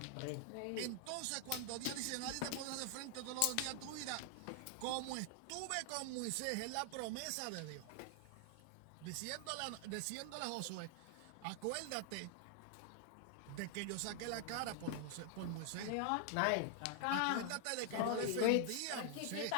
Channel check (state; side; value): different; both; correlation 0.00